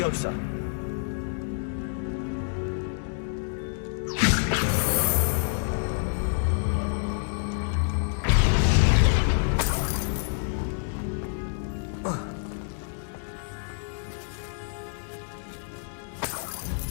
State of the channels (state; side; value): silent; right; digital silence